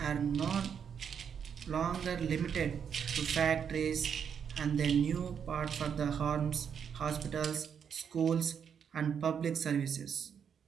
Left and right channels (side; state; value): left; quieter; 7.5 dB